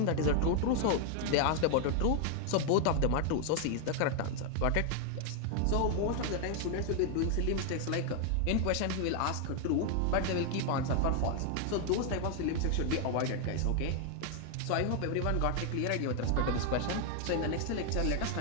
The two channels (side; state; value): both; different; correlation 0.00